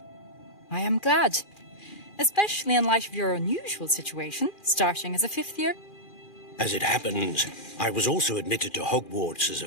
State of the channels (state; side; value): late; right; 2.4 ms